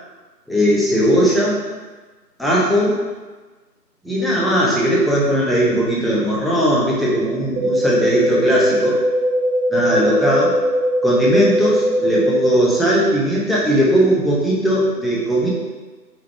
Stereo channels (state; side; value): normal; both; correlation 0.59